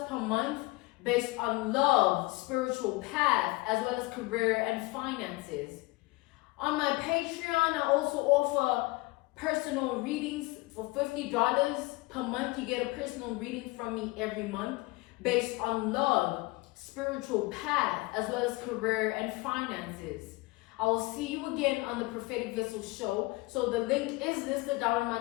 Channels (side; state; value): right; quieter; 22.5 dB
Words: per month based on love, spiritual path, as well as career and finances. On my Patreon, I also offer personal readings for $50 per month. You get a personal reading from me every month based on love, spiritual path, as well as career and finances. I will see you again on the Prophetic Vessel show. So the link is listed down in